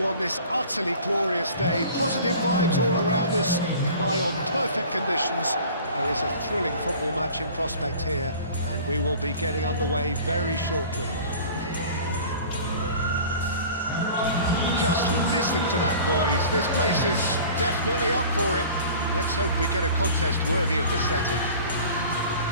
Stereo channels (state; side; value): inverted; both; correlation -0.43